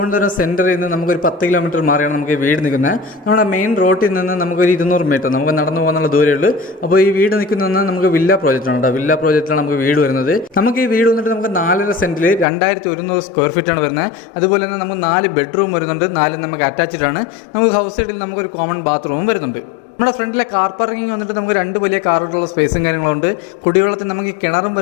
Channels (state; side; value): drops out; right; at 12.5 s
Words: സെൻറ്ററിൽ നിന്ന് നമുക്കൊരു 10 കിലോമീറ്റർ മാറിയാണ് നമുക്ക് ഈ വീട് നിൽക്കുന്നത്. നമ്മുടെ മെയിൻ റോഡിൽ നിന്ന് നമുക്കൊരു 200 മീറ്റർ നമുക്ക് നടന്നു പോകാനുള്ള ദൂരമേ ഉള്ളൂ. അപ്പോൾ ഈ വീട് നിൽക്കുന്നതെന്ന് നമുക്ക് വില്ല പ്രോജക്റ്റാണ് കേട്ടോ. വില്ല പ്രോജക്റ്റിലാണ് നമുക്ക് വീട് വരുന്നത്. നമുക്ക് ഈ വീട് വന്നിട്ട് നമുക്ക് 4.5 സെൻറ്റിൽ 2100 സ്ക്വയർ ഫീറ്റാണ് വരുന്നത്. അതുപോലെ തന്നെ നമുക്ക് 4 ബെഡ്റൂം വരുന്നുണ്ട്. 4 നമുക്ക് അറ്റാച്ച്ഡ് ആണ്. നമുക്ക് ഹൗസ് സൈഡിൽ നമുക്കൊരു കോമൺ ബാത്റൂമും വരുന്നുണ്ട്. നമ്മുടെ ഫ്രണ്ടിലെ കാർ പാർക്കിംഗ് വന്നിട്ട് നമുക്ക് 2 വലിയ കാറുകളുള്ള സ്പേസും കാര്യങ്ങളുണ്ട്. കുടിവെള്ളത്തിന് നമുക്ക് കിണറും